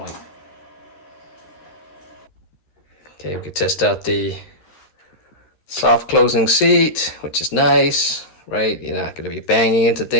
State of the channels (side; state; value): right; late; 13 ms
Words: Okay, we can test out the Soft closing seat, which is nice, right? You're not going to be banging into